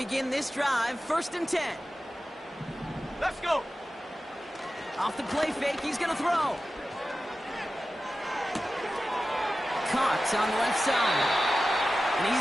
this drive. First and 10. Let's go. Off the play fake, he's going to throw. Caught on the left side. And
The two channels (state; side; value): normal; both; correlation 0.94